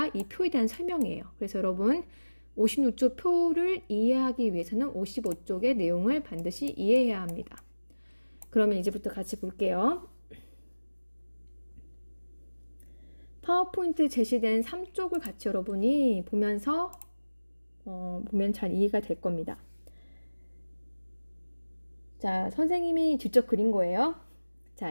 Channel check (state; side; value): inverted; both; correlation -1.00